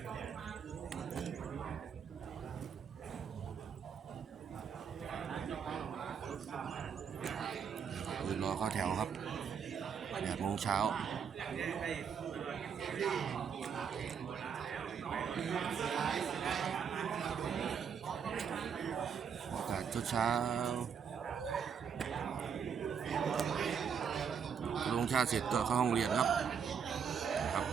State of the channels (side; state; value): left; quieter; 7.0 dB